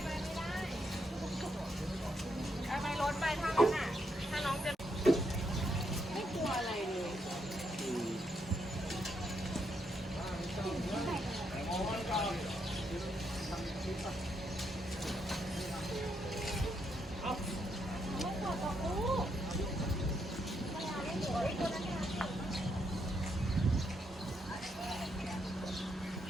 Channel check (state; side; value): normal; both; correlation 0.78